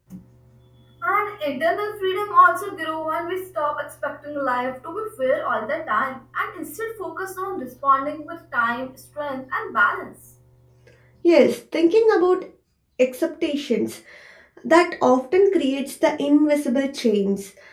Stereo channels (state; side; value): identical; both; correlation 1.00